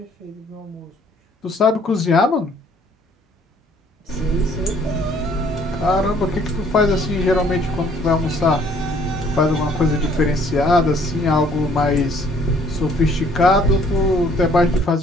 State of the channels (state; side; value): normal; both; correlation 0.60